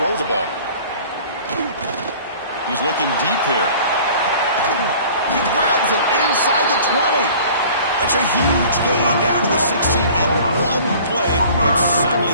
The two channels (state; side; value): inverted; both; correlation -0.48